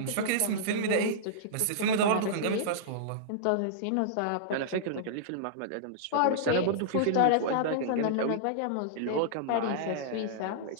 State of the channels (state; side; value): different; both; correlation -0.02